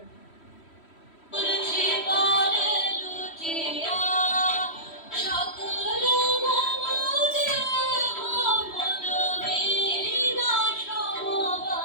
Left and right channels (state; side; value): late; right; 3.1 ms